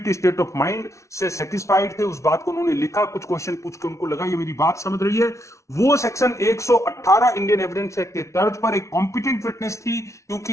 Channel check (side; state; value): right; late; 0.14 ms